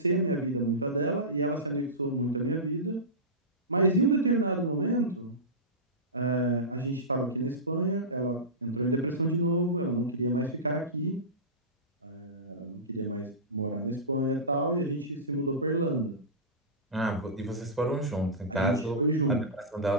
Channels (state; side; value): normal; both; correlation -0.18